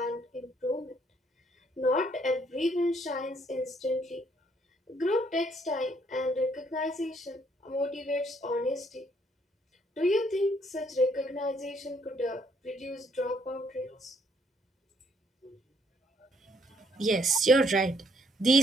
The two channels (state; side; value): normal; both; correlation 0.68